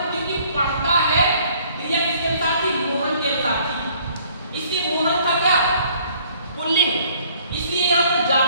क्योंकि पढ़ता है, क्रिया किसके अनुसार थी? मोहन के अनुसार थी। इसलिए मोहन था क्या? पुल्लिंग, इसलिए यहां पर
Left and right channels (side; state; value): both; inverted; correlation -0.59